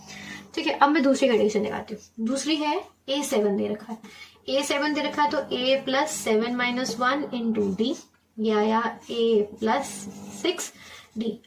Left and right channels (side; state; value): both; identical; correlation 1.00